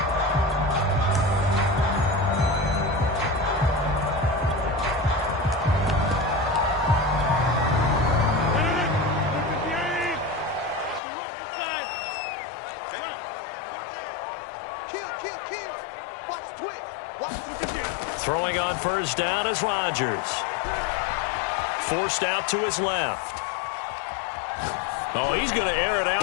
Throwing on first down is Rodgers. Forced out to his left. Oh, he's going to air it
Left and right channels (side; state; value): right; drops out; at 11.0 s